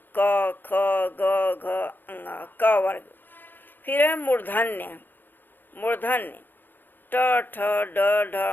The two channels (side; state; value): right; late; 0.092 ms